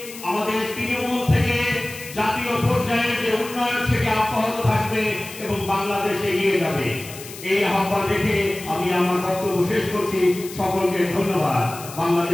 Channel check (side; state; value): left; noise; hiss, 14 dB below the sound